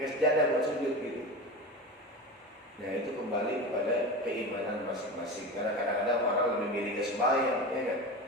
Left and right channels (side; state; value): both; normal; correlation 0.27